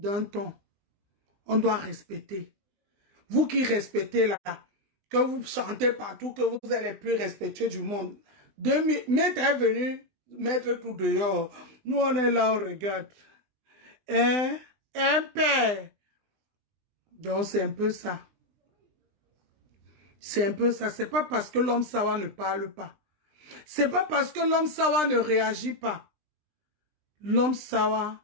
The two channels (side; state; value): left; late; 20 ms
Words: ton. On doit respecter. Vous qui respectez là, que vous chantez partout, que vous êtes les plus respectueux du monde. Maître est venu mettre tout dehors. Nous, on est là, on regarde. Hein? Un père. Donc, c'est un peu ça. C'est un peu ça. C'est pas parce que l'homme sawa ne parle pas. C'est pas parce que l'homme sawa ne réagit pas. L'homme sawa,